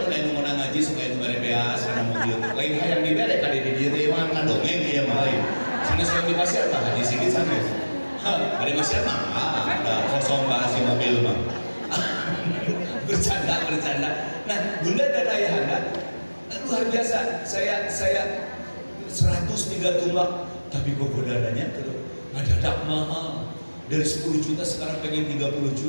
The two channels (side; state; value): both; inverted; correlation -1.00